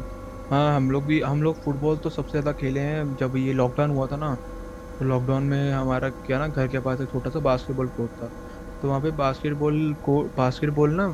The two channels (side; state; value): both; identical; correlation 1.00